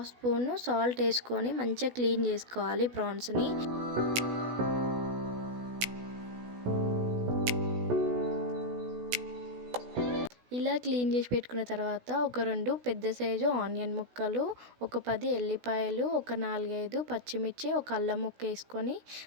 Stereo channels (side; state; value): left; late; 16 ms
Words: స్పూను సాల్ట్ వేసుకొని మంచిగా క్లీన్ చేసుకోవాలి ప్రాన్స్ని. ఇలా క్లీన్ చేసి పెట్టుకున్న తర్వాత ఒక 2 పెద్ద సైజు ఆనియన్ ముక్కలు, ఒక 10 ఎల్లిపాయలు, ఒక 4-5 పచ్చిమిర్చి, ఒక అల్లం ముక్క వేసుకొని